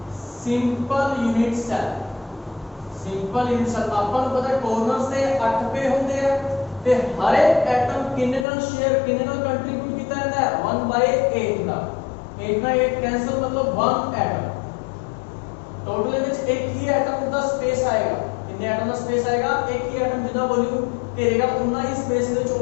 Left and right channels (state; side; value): drops out; right; at 8.5 s